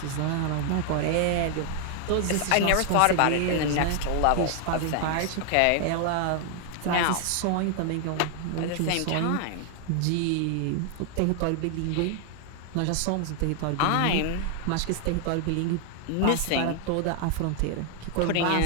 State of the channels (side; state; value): both; different; correlation 0.00